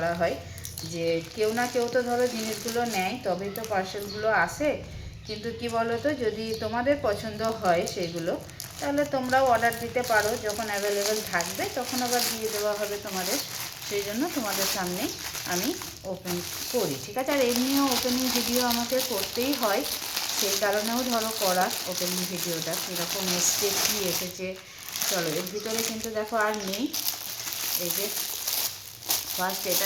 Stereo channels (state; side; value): identical; both; correlation 1.00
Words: হয়, যে কেউ না কেউ তো ধরো জিনিসগুলো নেয়, তবেই তো পার্সেলগুলো আসে। কিন্তু কি বলো তো, যদি তোমাদের পছন্দ হয় সেগুলো, তাহলে তোমরাও অর্ডার দিতে পারো। যখন অ্যাভেলেবেল থাকবে তখন আবার দিয়ে দেওয়া হবে তোমাদের। সেই জন্য তোমাদের সামনে আমি ওপেন করি, ঠিক আছে। আর এমনিও ওপেনিং ভিডিও আমাকে করতেই হয়, সেই কারণেও ধরো করা ওপেনিং ভিডিওটা। কীরকম এসছে, কী এসেছে, চলো এর ভিতরে কিন্তু দেখো আর নেই। এই যে ফার্স্ট এটা